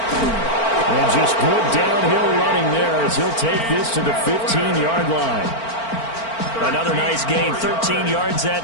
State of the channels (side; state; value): right; late; 4.4 ms